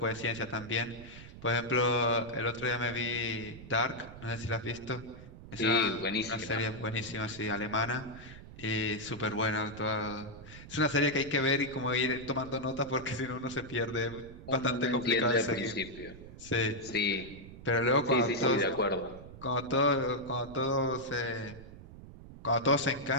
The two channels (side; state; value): right; noise; rumble, 16 dB below the sound